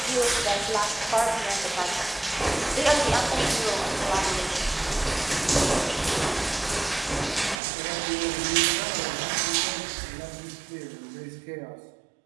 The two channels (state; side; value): drops out; left; at 7.6 s